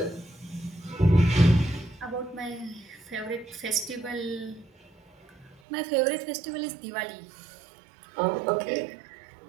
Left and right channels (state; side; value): drops out; left; at 5.6 s